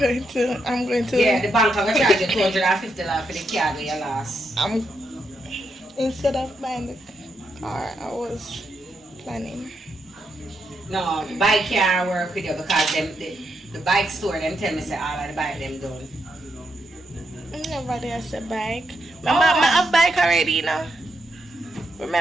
to. Yeah, the bank will charge you $250 for the car that you lost. Instead of buying the car, I was planning. No, the bike can't work with you because the bike store them tell me say all of the bike them done. Nobody has a bike. Remember, I have a bike already, you know.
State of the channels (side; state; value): both; normal; correlation 0.82